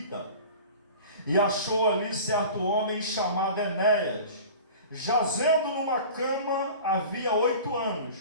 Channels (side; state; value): both; inverted; correlation -0.39